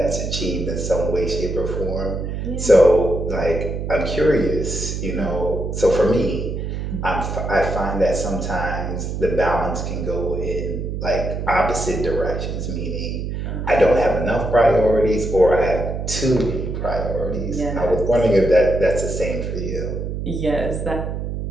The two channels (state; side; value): noise; right; hum, 4 dB below the sound